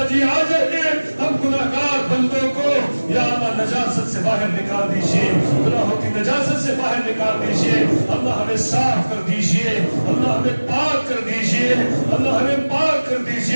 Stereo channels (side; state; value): both; inverted; correlation -1.00